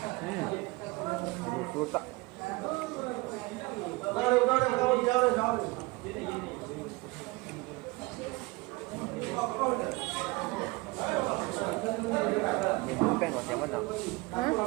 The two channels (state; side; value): quieter; left; 23.5 dB